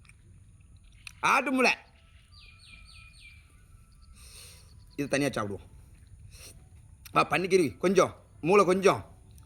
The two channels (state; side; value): identical; both; correlation 1.00